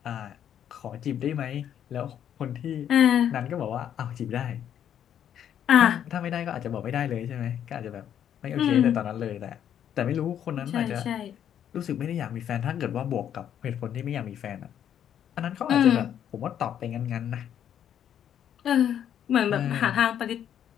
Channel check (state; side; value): quieter; right; 9.7 dB